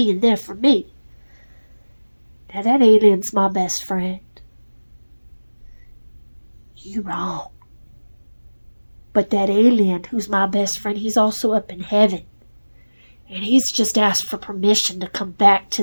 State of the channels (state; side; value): inverted; both; correlation -1.00